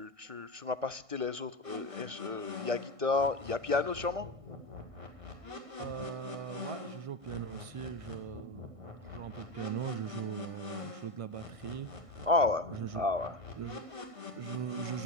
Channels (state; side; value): late; left; 1.5 ms